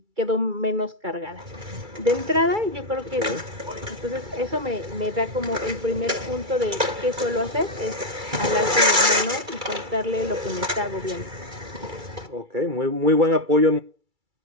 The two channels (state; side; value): late; left; 2.3 ms